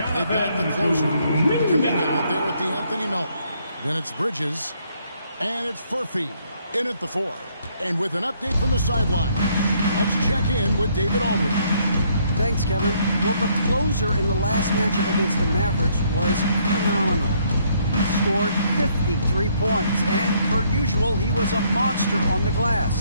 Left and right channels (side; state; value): both; inverted; correlation -0.69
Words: got the closer, Kuminga out there with Anthony Melton. Then it's Bridges, and it's Furphy in at the 4. And with an update from the sideline, let's check in with David Aldridge. Thanks, Kevin. Well, the closer in the last matchup against the Mavericks was phenomenal. He scored 53 points, and per usual, he was a monster on the